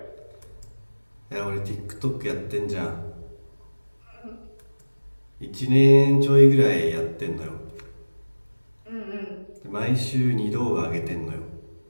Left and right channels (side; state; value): both; inverted; correlation -1.00